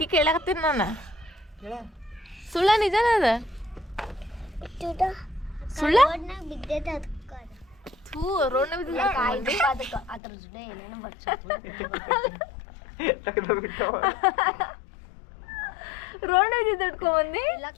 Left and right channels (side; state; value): right; drops out; at 10.2 s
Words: ಕೇಳಕತ್ತೀನಿ ನಾನು. ಸುಳ್ಳ ನಿಜನ ಅದ? ಸುಳ್ಳ ಥೂ ರೋಡ್ನ ರೋಡ್ ಇಟ್ಕೊಂಬಂದಿ.